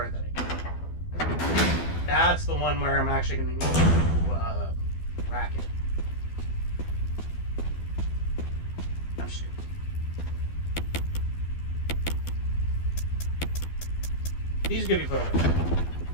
that I need. That's the one where I'm actually going to need to rack it. I'm stupid. These could be put away.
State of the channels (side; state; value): right; late; 12 ms